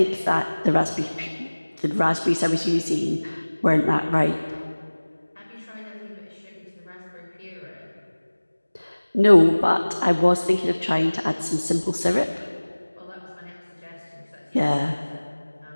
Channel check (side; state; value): both; inverted; correlation -1.00